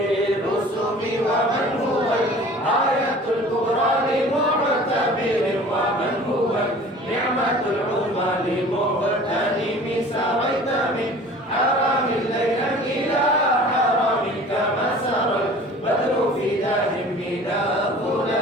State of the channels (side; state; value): both; normal; correlation 0.45